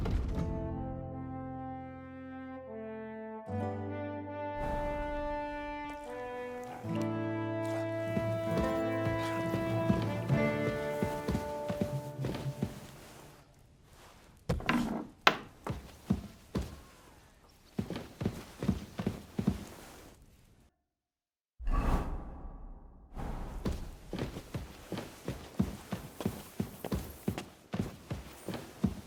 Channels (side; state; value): both; identical; correlation 1.00